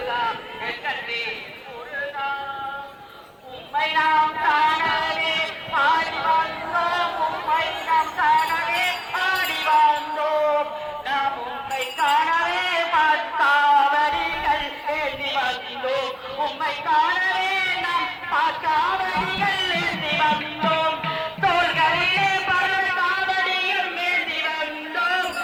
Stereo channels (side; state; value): both; identical; correlation 1.00